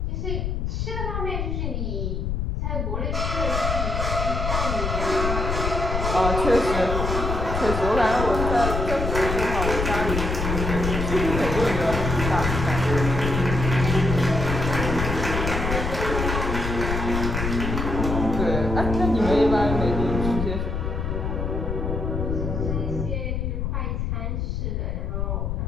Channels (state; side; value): noise; left; rumble, 1 dB below the sound